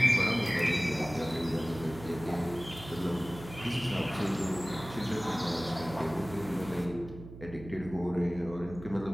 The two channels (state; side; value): noise; right; hum, 14 dB below the sound